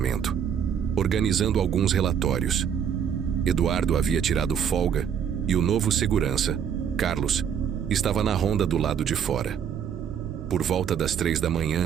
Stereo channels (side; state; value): left; quieter; 8.1 dB